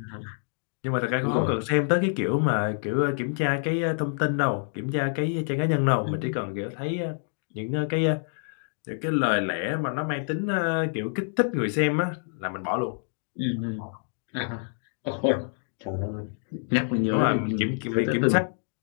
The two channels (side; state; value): right; silent; 60 dB below the other